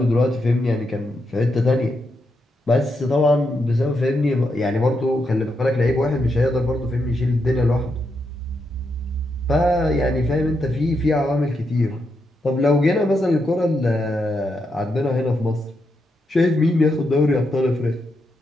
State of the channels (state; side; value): normal; both; correlation 0.82